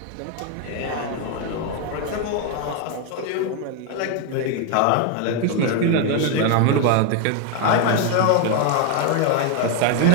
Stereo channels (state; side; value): different; both; correlation 0.01